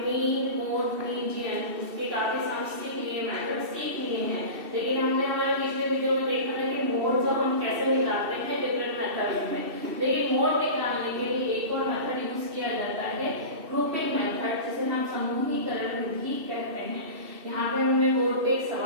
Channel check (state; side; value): late; left; 2.7 ms